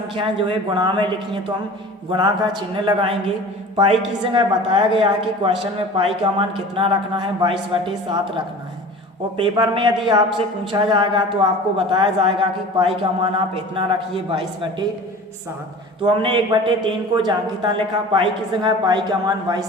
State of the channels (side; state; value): both; normal; correlation 0.39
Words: जो है गुणा में लिखी हैं तो हम गुणा का चिन्ह लगाएंगे। पाई की जगह बताया गया है कि क्वेश्चन में पाई का मान कितना रखना है 22/7 रखना है और पेपर में यदि आपसे पूछा जाएगा तो आपको बताया जाएगा कि पाई का मान आप इतना रखिए 22/7। तो हमने 1/3 को जांघिता लिखा, पाई की जगह पाई का मान